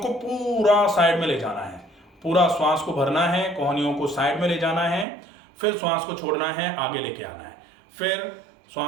पूरा साइड में ले जाना है। पूरा श्वास को भरना है, कोहनियों को साइड में ले जाना है, फिर श्वास को छोड़ना है, आगे लेके आना है। फिर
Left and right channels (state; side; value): drops out; left; at 5.1 s